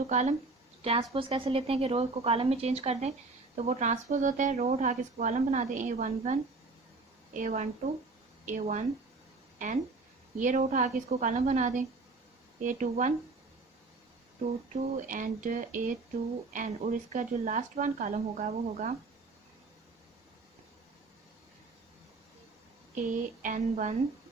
कॉलम। ट्रांसपोज कैसे लेते हैं कि रोज को कॉलम में चेंज कर दें, तो वो ट्रांसपोज होता है। रो उठा के इसको कॉलम बना दें, A11 A12 A1n। ये रो उठा के इसको कॉलम बना दें, A21 22 एंड A2n, और इसका जो लास्ट वन कॉलम होगा वो होगा AN1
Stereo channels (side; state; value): left; quieter; 3.7 dB